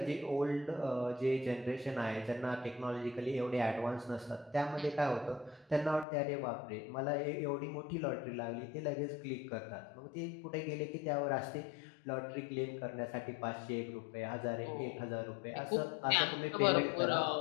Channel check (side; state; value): right; drops out; at 6.1 s